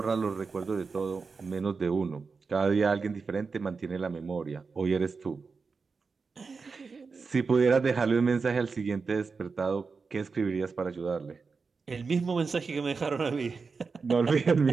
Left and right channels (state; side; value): quieter; left; 4.8 dB